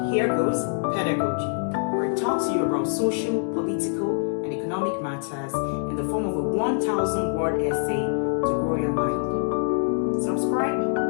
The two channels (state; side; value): silent; right; digital silence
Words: here goes Pedagogy, where I talk to you about social, political, and economic matters in the form of a 1,000-word essay to grow your mind. Subscribe